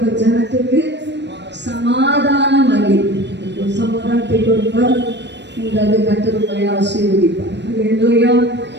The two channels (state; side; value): late; left; 0.51 ms